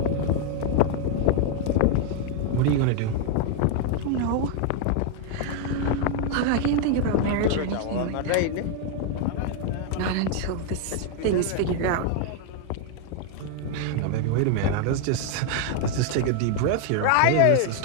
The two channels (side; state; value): both; different; correlation 0.00